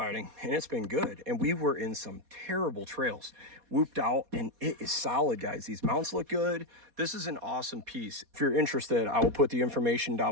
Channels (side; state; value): left; late; 4.2 ms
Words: and it's been good. And we were in some terrible trails, whooped out, and it is solid, guys. These mounts look good. This is an awesome piece. If you're interested, I will put the information